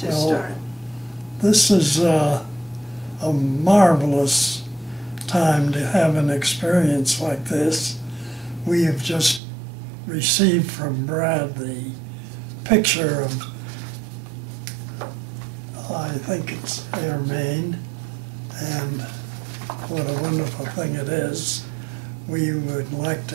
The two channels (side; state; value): left; drops out; at 9.4 s